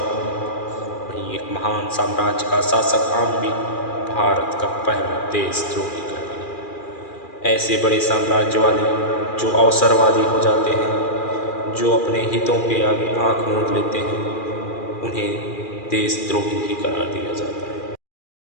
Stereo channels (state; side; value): late; right; 2.4 ms